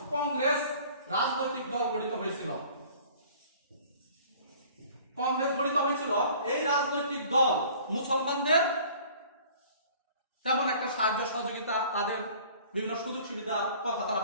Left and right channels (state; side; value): inverted; both; correlation -0.50